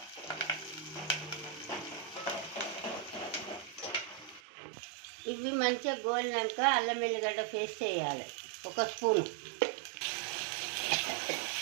ఇవి మంచిగా గోలినాక అల్లం వెల్లిగడ్డ పేస్ట్ వేయాలి 1 స్పూను.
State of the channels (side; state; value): left; drops out; at 4.4 s